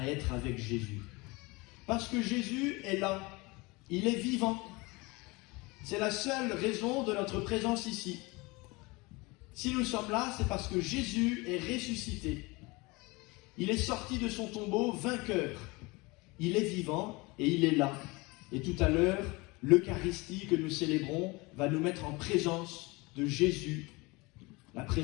être avec Jésus. Parce que Jésus est là, il est vivant. C'est la seule raison de notre présence ici. Si nous sommes là, c'est parce que Jésus est ressuscité. Il est sorti de son tombeau vainqueur. Il est vivant et il est là. Et tout à l'heure, l'Eucharistie que nous célébrons va nous mettre en présence de Jésus. La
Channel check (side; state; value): right; quieter; 24.7 dB